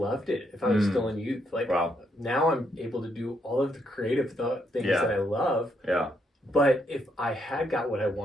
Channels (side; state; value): both; normal; correlation 0.76